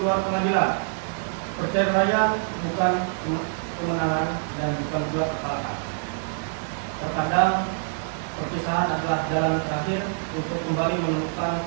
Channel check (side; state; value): left; silent; digital silence